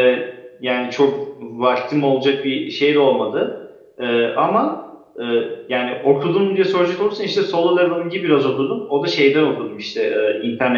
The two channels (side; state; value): both; identical; correlation 1.00